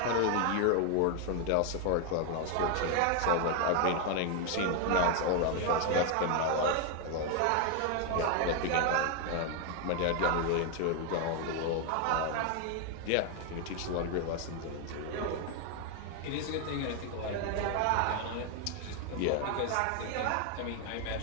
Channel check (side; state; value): both; different; correlation 0.01